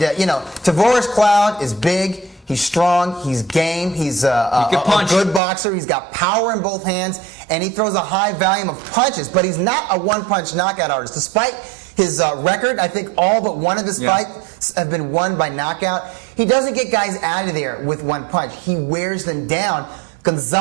Tavoris Cloud is big. He's strong. He's game. He's a good boxer. He's got power in both hands, and he throws a high volume of punches. But he's not a one-punch knockout artist. Despite his record, I think all but one of his fights have been won by knockout. He doesn't get guys out of there with one punch. He wears them down.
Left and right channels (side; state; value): left; drops out; at 5.4 s